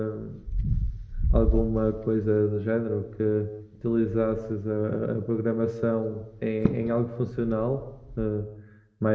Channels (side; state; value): both; identical; correlation 1.00